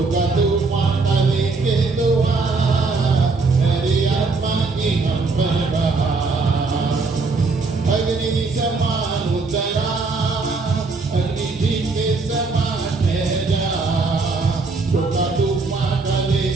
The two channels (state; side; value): quieter; left; 4.0 dB